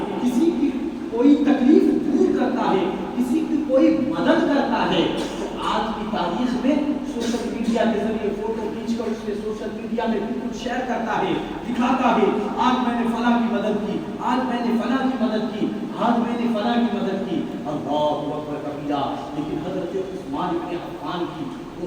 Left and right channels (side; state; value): both; identical; correlation 1.00